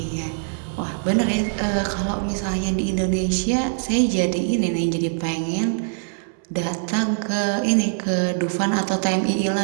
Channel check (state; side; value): silent; left; 64 dB below the other